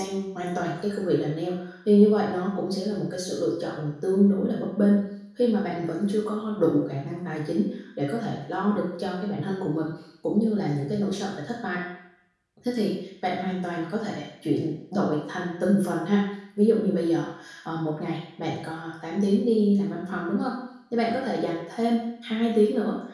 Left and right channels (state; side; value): identical; both; correlation 1.00